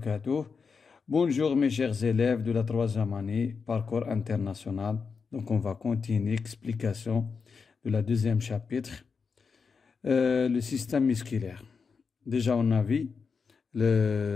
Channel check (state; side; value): quieter; right; 5.4 dB